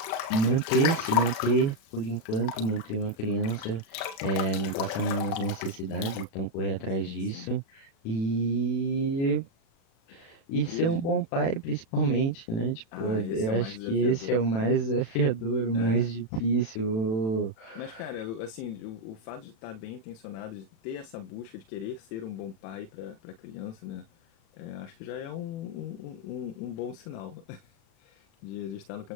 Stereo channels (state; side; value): late; right; 36 ms